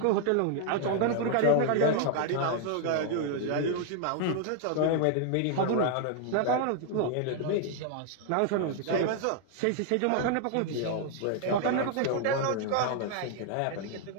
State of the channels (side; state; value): both; different; correlation 0.00